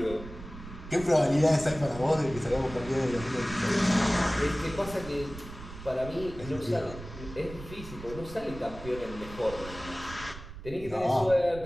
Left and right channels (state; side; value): noise; right; rumble, 13 dB below the sound